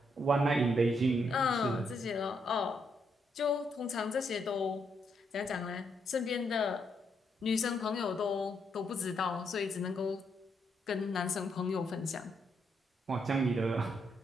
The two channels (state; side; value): normal; both; correlation 0.77